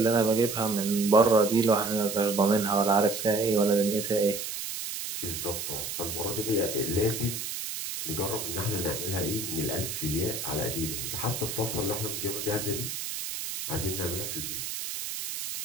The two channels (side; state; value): right; noise; hiss, 5 dB below the sound